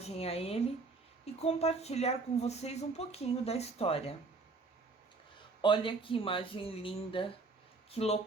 a ele e compartilhar com vocês um pouquinho da história. Olha que imagem linda, que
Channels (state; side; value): quieter; left; 3.9 dB